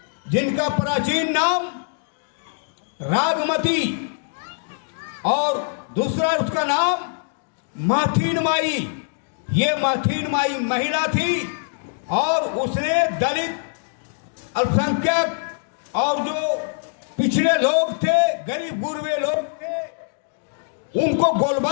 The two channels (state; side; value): silent; right; digital silence